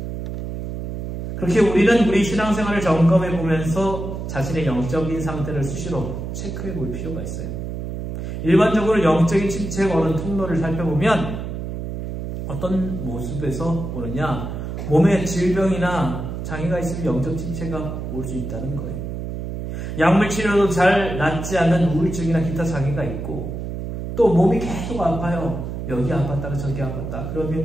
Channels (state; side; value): noise; right; hum, 6 dB below the sound